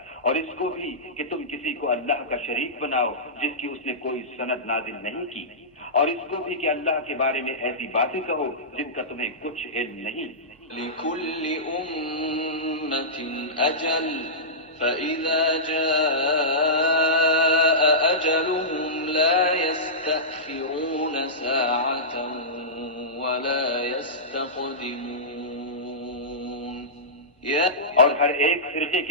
اور اس کو بھی کہ تم کسی کو اللہ کا شریک بناؤ جس کی اس نے کوئی سند نازل نہیں کی اور اس کو بھی کہ اللہ کے بارے میں ایسی باتیں کہو جن کا تمہیں کچھ علم نہیں. لِكُلِّ أُمَّةٍ أَجَلٌ فَإِذَا جَاءَ أَجَلُهُمْ لَا يَسْتَأْخِرُونَ سَاعَةً وَلَا يَسْتَقْدِمُونَ. اور ہر ایک فرقے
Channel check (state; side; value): normal; both; correlation -0.17